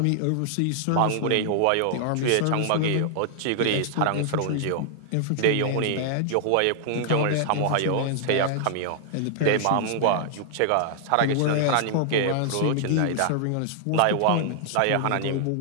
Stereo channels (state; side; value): different; both; correlation -0.01